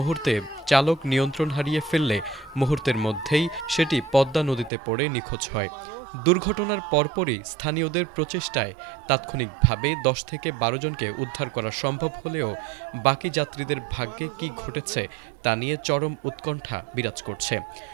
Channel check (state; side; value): drops out; left; at 4.7 s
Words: চালক নিয়ন্ত্রণ হারিয়ে ফেললে মুহূর্তের মধ্যেই সেটি পদ্মা নদীতে পড়ে নিখোঁজ হয়। দুর্ঘটনার পরপরই স্থানীয়দের প্রচেষ্টায় তাৎক্ষণিকভাবে ১০ থেকে ১২ জনকে উদ্ধার করা সম্ভব হলেও বাকি যাত্রীদের ভাগ্যে কী ঘটেছে তা নিয়ে চরম উৎকণ্ঠা বিরাজ করছে।